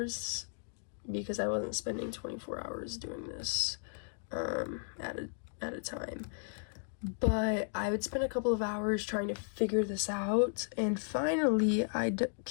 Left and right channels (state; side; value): silent; right; digital silence